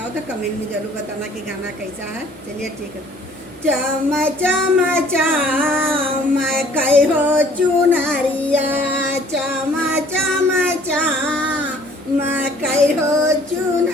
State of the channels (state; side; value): normal; both; correlation 0.55